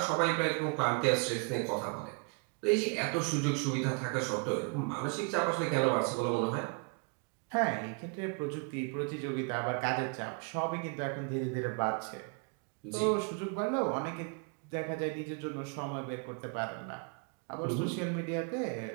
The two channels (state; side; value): quieter; left; 36.1 dB